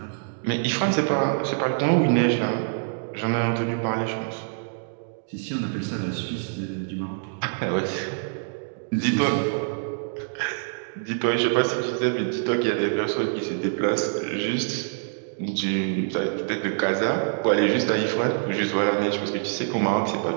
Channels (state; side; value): silent; left; digital silence